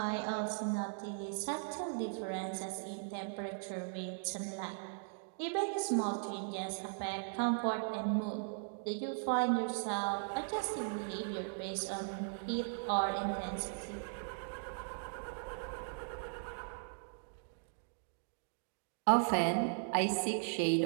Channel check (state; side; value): silent; left; digital silence